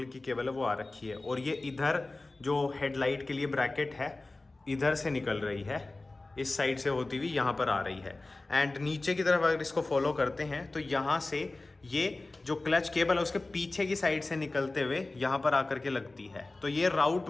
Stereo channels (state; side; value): quieter; right; 3.1 dB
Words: की केबल है वो आ रखी है, और ये इधर जो हेडलाइट के लिए ब्रैकेट है इधर से निकल रही है। इस साइड से होती हुई यहाँ पर आ रही है। एंड नीचे की तरफ अगर इसको फॉलो करते हैं तो यहाँ से ये जो क्लच केबल है उसके पीछे की साइड से निकलते हुए यहाँ पर आकर के लगती है। तो ये राउट